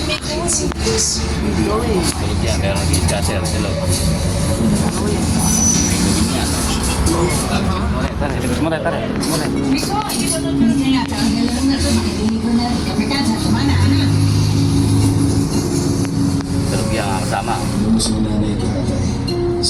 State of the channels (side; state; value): both; identical; correlation 1.00